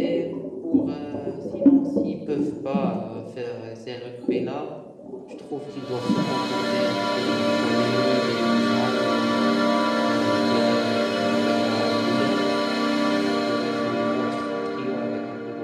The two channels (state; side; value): identical; both; correlation 1.00